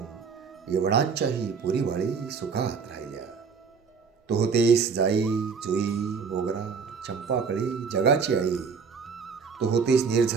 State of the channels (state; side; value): quieter; left; 5.6 dB